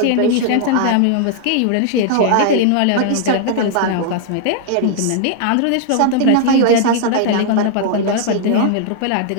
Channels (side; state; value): both; different; correlation 0.00